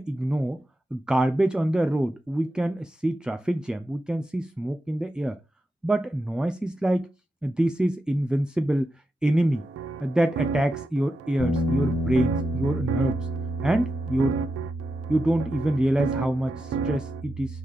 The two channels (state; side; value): normal; both; correlation 0.89